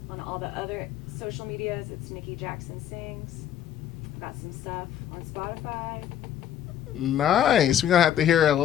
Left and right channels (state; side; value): quieter; right; 10.4 dB